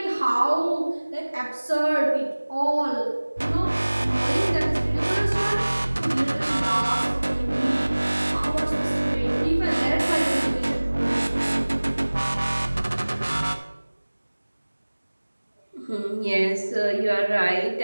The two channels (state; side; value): inverted; both; correlation -1.00